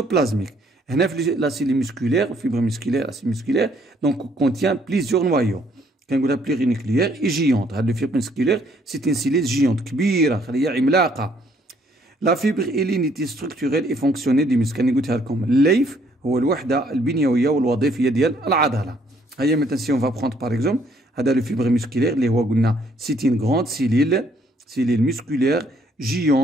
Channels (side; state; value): both; normal; correlation 0.65